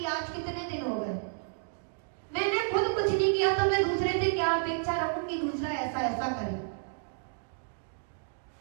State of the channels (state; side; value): silent; left; digital silence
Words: आज कितने दिन हो गए, मैंने खुद कुछ नहीं किया तो मैं दूसरे से क्या अपेक्षा रखूं कि दूसरा ऐसा ऐसा करे।